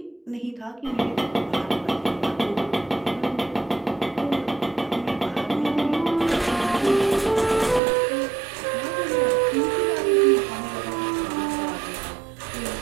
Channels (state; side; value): drops out; left; at 7.8 s